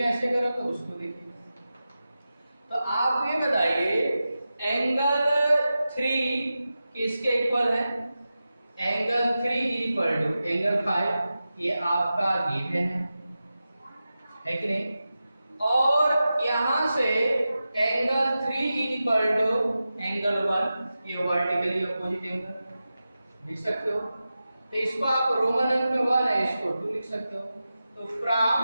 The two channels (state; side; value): inverted; both; correlation -0.93